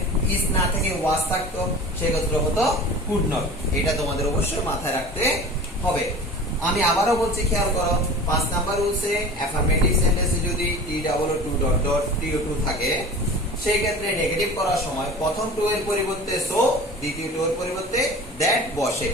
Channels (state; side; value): normal; both; correlation 0.38